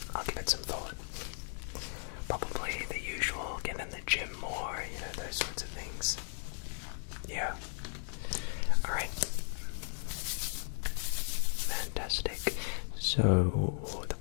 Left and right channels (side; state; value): right; silent; 54 dB below the other